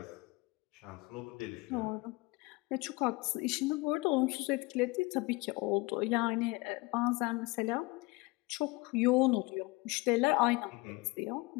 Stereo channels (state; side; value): quieter; right; 24.6 dB